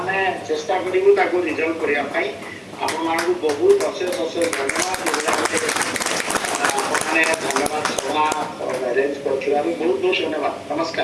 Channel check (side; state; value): both; identical; correlation 1.00